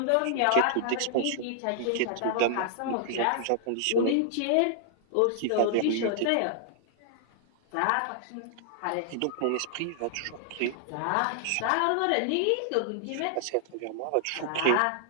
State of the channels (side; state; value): both; different; correlation -0.01